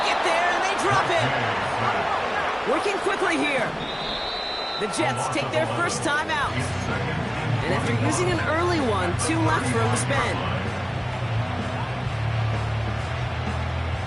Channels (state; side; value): identical; both; correlation 1.00